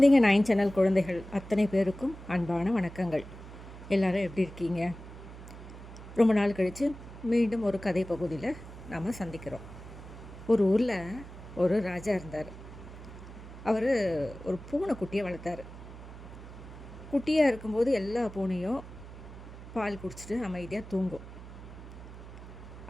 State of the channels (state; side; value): noise; right; hum, 14 dB below the sound